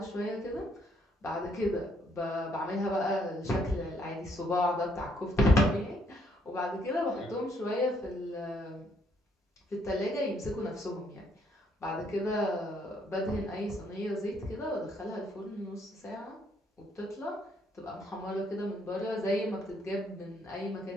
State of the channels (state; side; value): normal; both; correlation 0.69